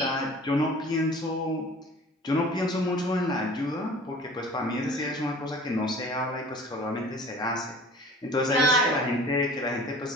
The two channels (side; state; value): both; normal; correlation 0.44